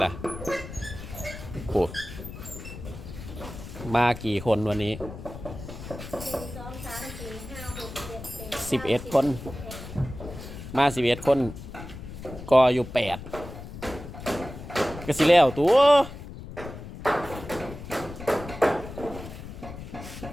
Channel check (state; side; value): noise; left; rumble, 11 dB below the sound